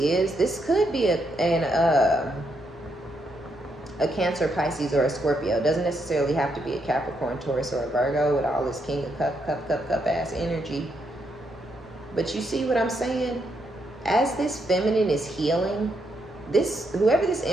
this could be a Cancer, Pisces, or a Scorpio. It doesn't necessarily have to be a Capricorn, Taurus, or a Virgo with all this King of Cup ass energy. But you see what I'm saying? As this feminine is healing, whoever this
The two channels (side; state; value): both; normal; correlation 0.78